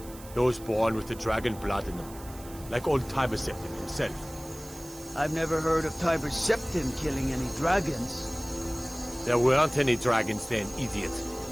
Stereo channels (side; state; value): right; noise; hiss, 18 dB below the sound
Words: Those born with the dragon blood in them. Like old Tiber Septim himself. I've never heard of Tiber Septim killing any dragons. There weren't any dragons then, idiot.